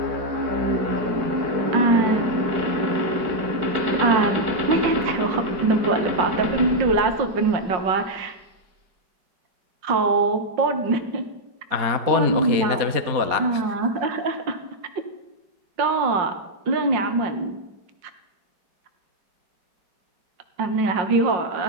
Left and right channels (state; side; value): late; left; 4.3 ms